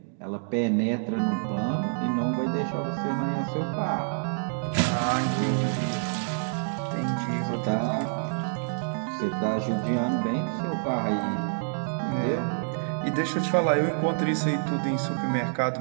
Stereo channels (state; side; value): silent; left; digital silence